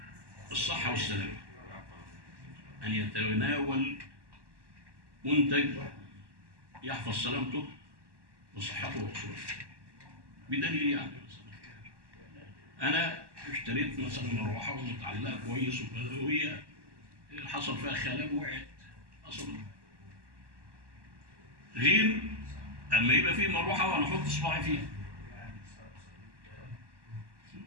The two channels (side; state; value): left; late; 1.1 ms